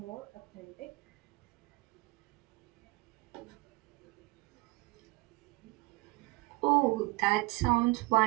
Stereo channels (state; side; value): quieter; left; 23.5 dB